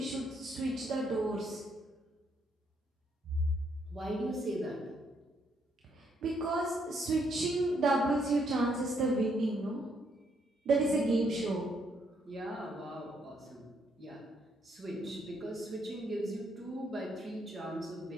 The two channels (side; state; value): both; normal; correlation 0.73